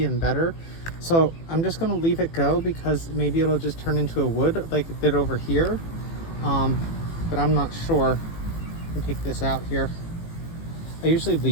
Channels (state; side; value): late; right; 18 ms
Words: and better. So I'm just gonna leave it go because maybe it'll just turn into a wood like it did over here. But I'm not sure. Let me take this out here. I usually